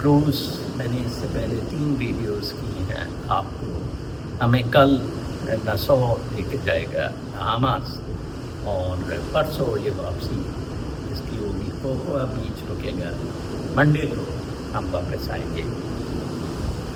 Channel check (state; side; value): identical; both; correlation 1.00